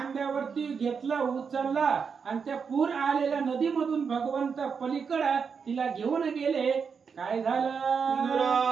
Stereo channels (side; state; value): left; quieter; 6.0 dB